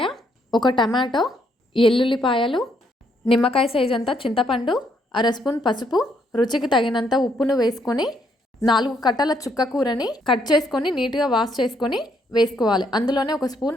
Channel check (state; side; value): normal; both; correlation 0.72